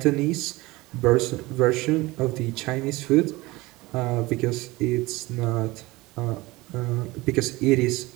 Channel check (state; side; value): quieter; left; 21.1 dB